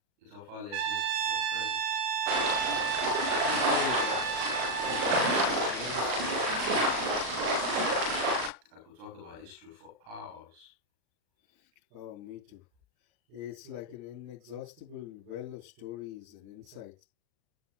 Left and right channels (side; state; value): left; late; 38 ms